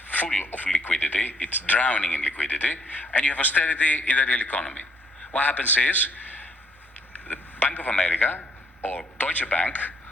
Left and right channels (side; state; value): both; normal; correlation 0.67